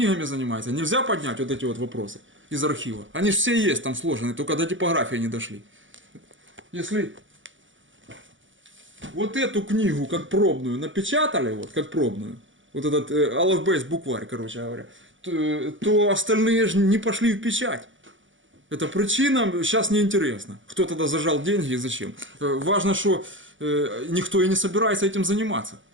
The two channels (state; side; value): late; left; 0.56 ms